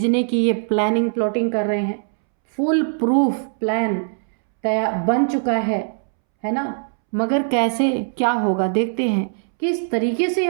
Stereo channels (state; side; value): silent; left; 65 dB below the other